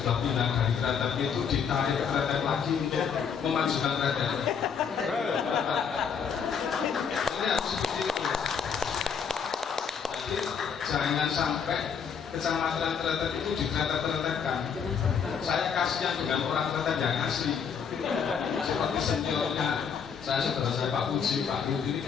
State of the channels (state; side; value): quieter; right; 6.8 dB